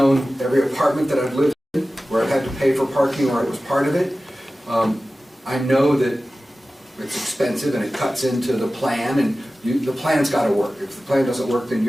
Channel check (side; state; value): both; normal; correlation 0.95